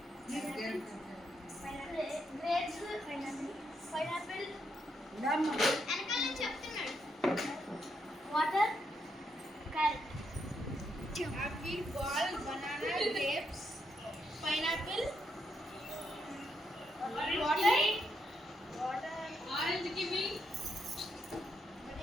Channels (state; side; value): normal; both; correlation 0.79